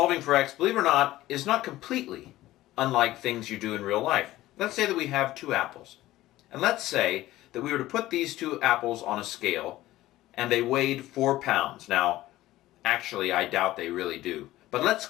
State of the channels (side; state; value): right; quieter; 16.0 dB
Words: for x, believe it or not, is not completely unlike things you do in real life. Let's say that we have two apples. And let's say that we were to put these two apples on a scale and they weighed 4 pounds. Now, actually, I doubt they really do. But let's